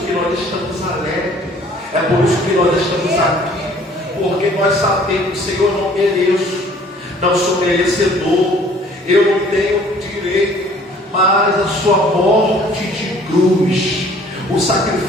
que nós estamos alegres, é por isso que nós estamos aqui, porque nós sabemos, Senhor, não mereço, não sou merecedor, eu não tenho direito, mas a sua morte de cruz, o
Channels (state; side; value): normal; both; correlation 0.55